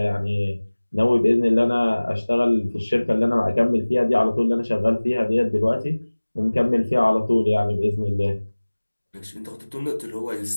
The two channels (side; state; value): both; inverted; correlation -1.00